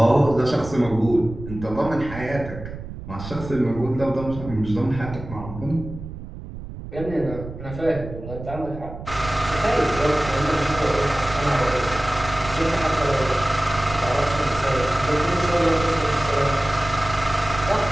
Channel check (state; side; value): noise; right; rumble, 11 dB below the sound